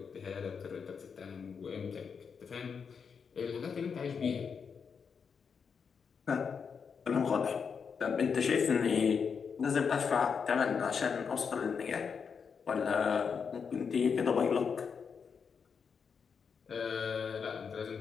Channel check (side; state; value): right; quieter; 6.2 dB